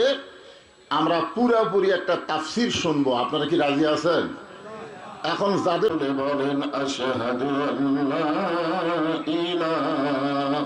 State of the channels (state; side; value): identical; both; correlation 1.00